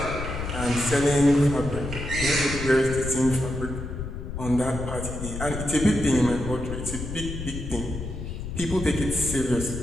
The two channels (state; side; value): noise; left; rumble, 6 dB below the sound